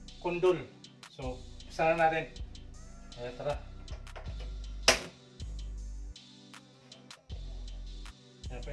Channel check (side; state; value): both; identical; correlation 1.00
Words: kundol. So, umpisa na natin. Ayan, tara. Ayan,